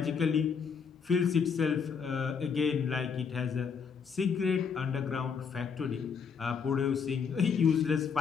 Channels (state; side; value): quieter; right; 6.2 dB